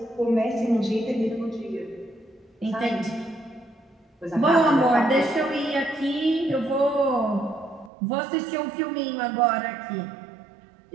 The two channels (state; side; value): drops out; left; at 7.9 s